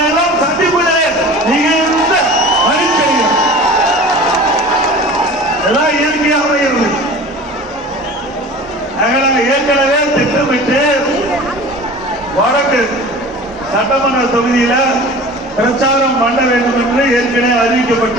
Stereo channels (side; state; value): both; normal; correlation 0.40